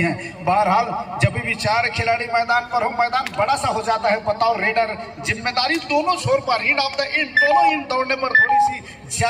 है। बहरहाल जब भी 4 खिलाड़ी मैदान पर हो, मैदान बड़ा सा हो जाता है। बताओ रेडर जिम्मेदारी दोनों छोर पर, इन ऑफ द इन, दोनों इन दौड़ने पर थोड़ी सी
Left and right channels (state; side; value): identical; both; correlation 1.00